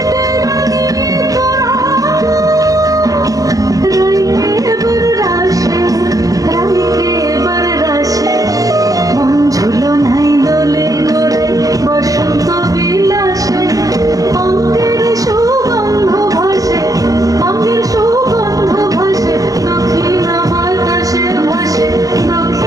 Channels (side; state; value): left; late; 0.17 ms